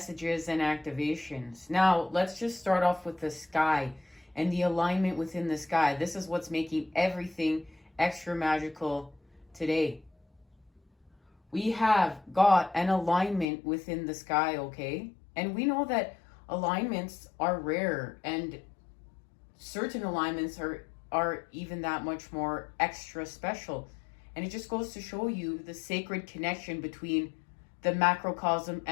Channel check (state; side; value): drops out; right; at 13.5 s